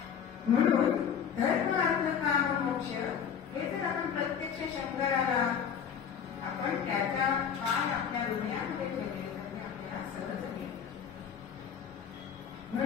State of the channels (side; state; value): right; quieter; 7.7 dB